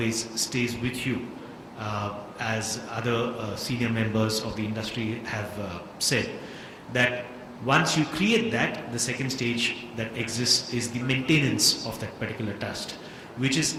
stays with you. As other senior members of the industry have said, that once you create that, the second stage that exists is the maintenance of that particular trust, which is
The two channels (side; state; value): both; identical; correlation 1.00